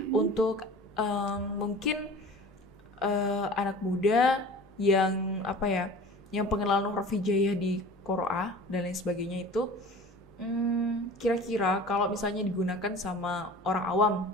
untuk mungkin anak muda yang apa ya, yang pengenalan huruf hijaiyah di Qur'an dan lain sebagainya itu, kira-kira kalau misalnya digunakan sama orang awam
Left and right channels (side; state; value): both; normal; correlation 0.41